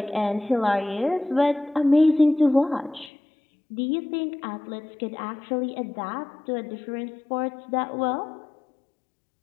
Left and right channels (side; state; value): right; drops out; at 3.1 s